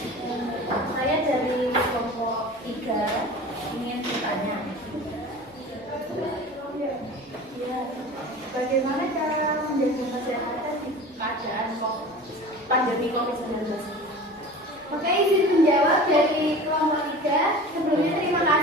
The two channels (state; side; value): normal; both; correlation 0.37